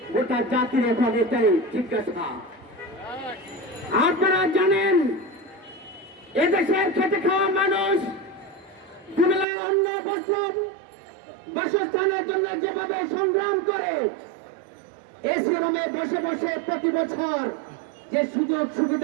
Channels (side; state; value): left; drops out; at 9.5 s